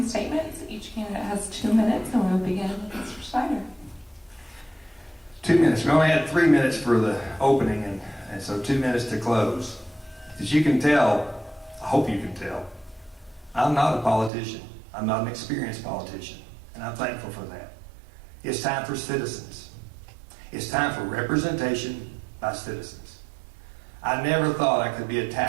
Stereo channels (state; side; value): drops out; left; at 14.3 s